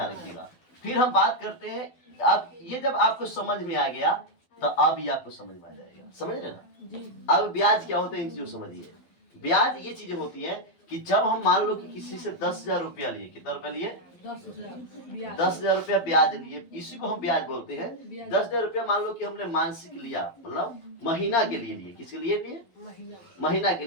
रखिएगा। फिर हम बात करते हैं, अब ये जब आपको समझ में आ गया तो अब ये आपको समझ में आ जाएगा, समझ रहे ना। अब ब्याज क्या होता है, इन चीजों समझिए। ब्याज ये चीजें होती है कि जब हम मान लो कि किसी से 10,000 रुपया लिए, कितना रुपया लिए, 10,000 रुपया ब्याज लिए, इसी को हम ब्याज बोलते हैं। 10,000 रुपया मान लो कि हमने मानसिक लिया, मतलब महीना के लिए लिए। किसके लिए लिए? महीना के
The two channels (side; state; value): right; late; 12 ms